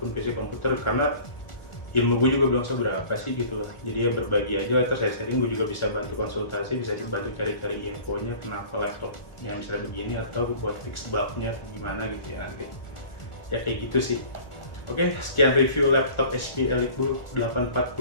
PC komputer, karena ilmu gue juga belum seberapa sih gitu lah. Jadi ya berbagi aja, terus saya sharing, gue juga bisa bantu konsultasi, bisa dibantu cari-cari infonya kenapa laptop yang misalnya begini, atau buat fix bugnya gimana gitu ya nanti. Ya kayak gitu sih. Oke, sekian review laptop HP EliteBook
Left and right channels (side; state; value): right; late; 1.4 ms